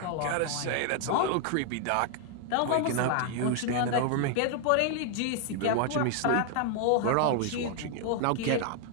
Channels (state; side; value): different; both; correlation 0.00